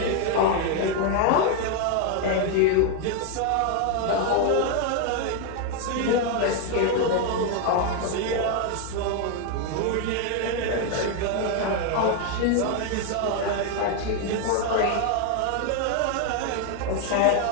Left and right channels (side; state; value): both; different; correlation 0.01